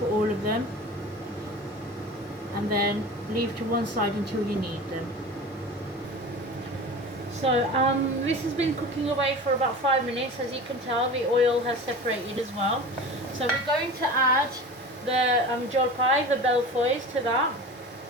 all of them, and then leave to one side until you need them. So this has been cooking away for about 5 minutes. As you can tell, the oil has separated as well. So we're going to add the jolpai, the belfois, to that.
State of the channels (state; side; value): normal; both; correlation 0.35